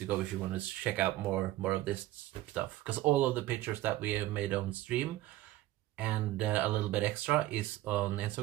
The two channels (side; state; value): left; quieter; 15.7 dB